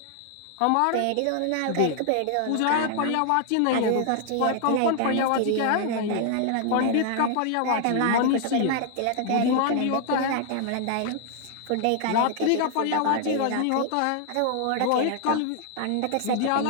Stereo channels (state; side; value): different; both; correlation 0.00